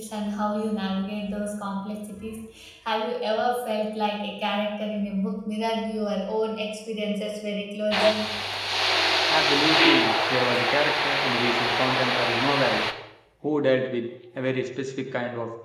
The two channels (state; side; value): identical; both; correlation 1.00